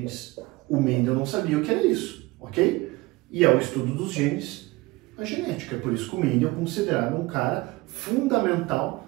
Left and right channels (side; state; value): left; quieter; 21.6 dB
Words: O Mendel não sabia o que era isso, ok? E é o estudo dos genes a genética. Por isso que o Mendel é considerado um cara fundamental